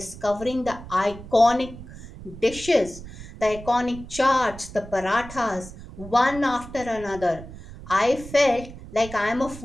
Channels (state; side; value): noise; right; rumble, 14 dB below the sound